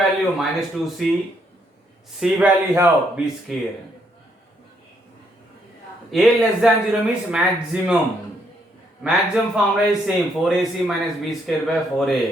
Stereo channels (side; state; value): both; normal; correlation 0.72